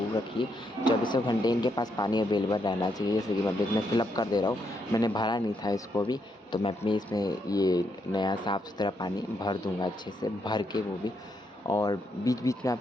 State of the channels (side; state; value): both; normal; correlation 0.78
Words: रखिए। 24 घंटे इनके पास पानी अवेलेबल रहना चाहिए। जैसे कि मैं इसमें फिलअप कर दे रहा हूँ, मैंने भरा नहीं था इसको भी, तो मैं अपने इसमें ये नया साफ़ सुथरा पानी भर दूँगा अच्छे से, भर के वो भी। और बीच बीच में